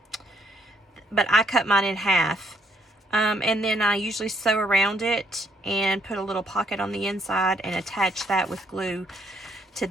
I cut mine in half, and then I usually sew around it and put a little pocket on the inside and attach that with glue to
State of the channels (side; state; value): both; normal; correlation 0.70